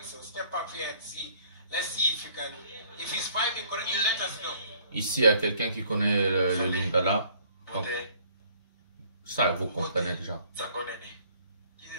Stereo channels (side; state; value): both; inverted; correlation -0.59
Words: So step up here and see. Let's see if you can. If he's vibing, you let us know. Ici, il y a quelqu'un qui connaît le lingala. Donc, ça, vous comprenez déjà.